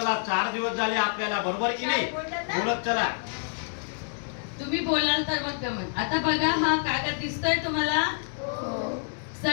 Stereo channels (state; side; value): silent; right; digital silence